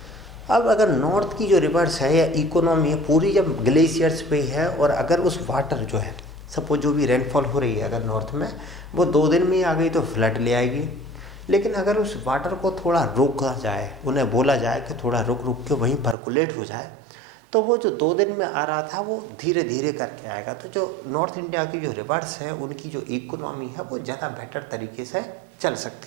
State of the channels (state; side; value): drops out; left; at 16.2 s